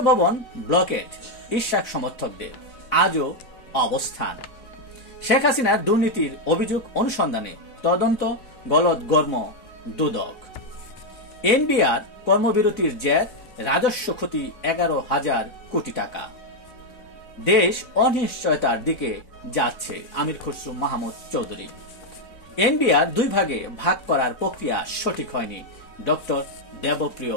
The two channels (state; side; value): late; right; 4.0 ms